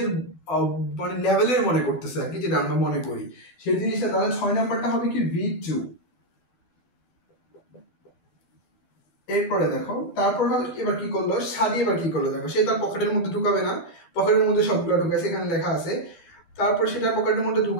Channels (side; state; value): right; late; 12 ms